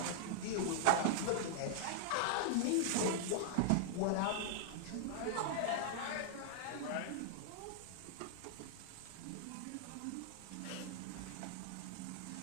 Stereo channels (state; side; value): different; both; correlation -0.01